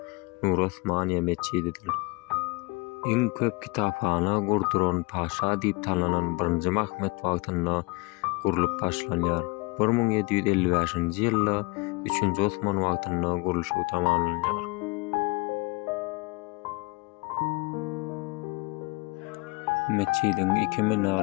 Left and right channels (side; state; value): right; quieter; 26.7 dB